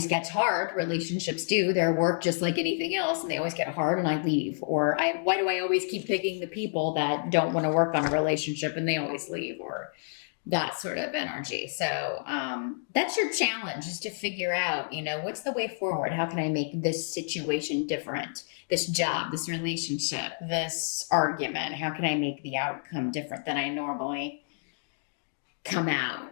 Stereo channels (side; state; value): right; silent; digital silence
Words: gets hard. Relationships do. They're work just like anything else, and they always get hard, and I leave. Or why do I always keep picking the people that don't want to work on a relationship, and they always leave? Or that sort of energy. So that's your challenge, is to figure out, what's the way forward? How can I make this situation different? This job, this relationship, this argument, how can I make the outcome different than I normally come out